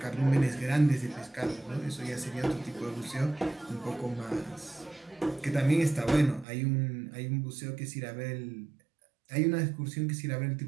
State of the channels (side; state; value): left; drops out; at 6.5 s